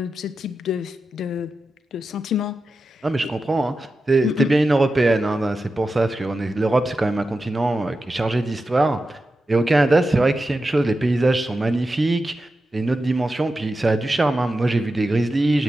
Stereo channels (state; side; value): normal; both; correlation 0.91